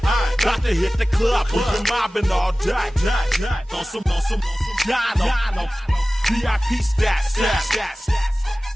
Got to hit the club, we've been mobbing all day. On some Dino, VIP stats.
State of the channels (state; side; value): normal; both; correlation 0.97